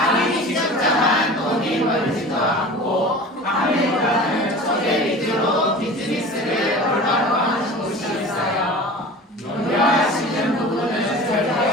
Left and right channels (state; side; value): normal; both; correlation 0.38